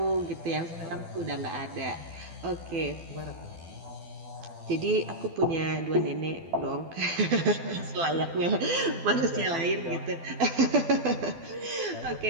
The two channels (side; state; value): left; late; 12 ms